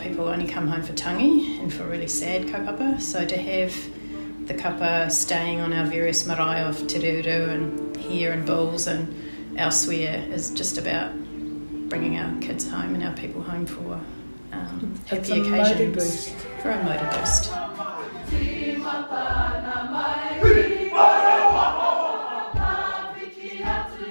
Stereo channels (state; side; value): inverted; both; correlation -1.00